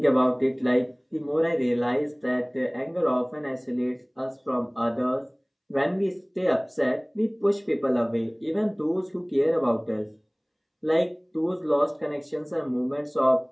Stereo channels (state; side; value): identical; both; correlation 1.00